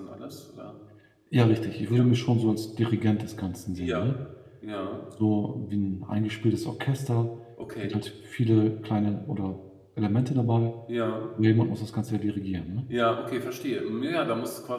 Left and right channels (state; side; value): identical; both; correlation 1.00